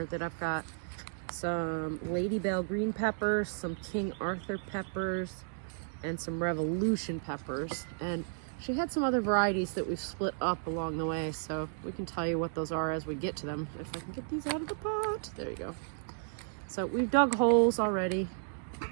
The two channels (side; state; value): left; silent; digital silence